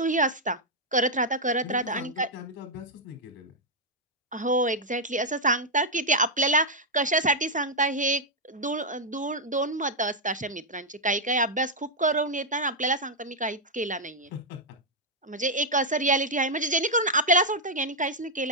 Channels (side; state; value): both; normal; correlation -0.02